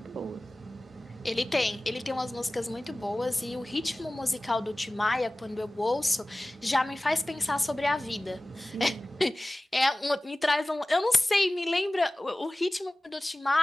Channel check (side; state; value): both; normal; correlation 0.97